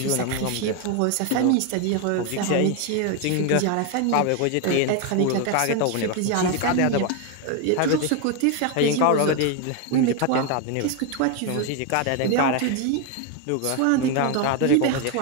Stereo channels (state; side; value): different; both; correlation 0.01